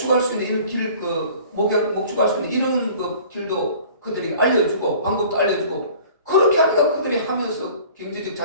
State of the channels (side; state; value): both; inverted; correlation -0.48